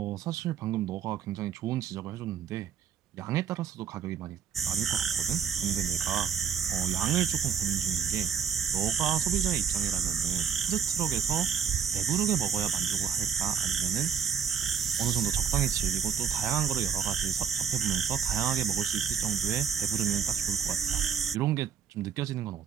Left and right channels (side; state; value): left; quieter; 7.5 dB